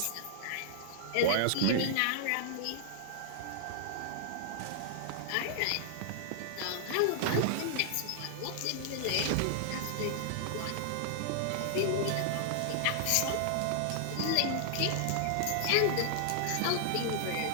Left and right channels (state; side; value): different; both; correlation -0.01